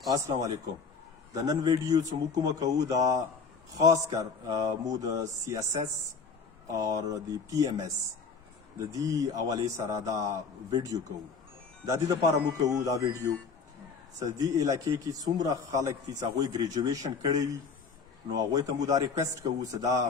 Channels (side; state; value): right; quieter; 5.1 dB